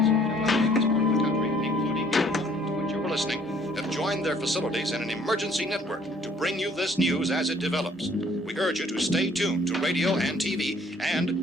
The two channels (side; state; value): both; normal; correlation 0.60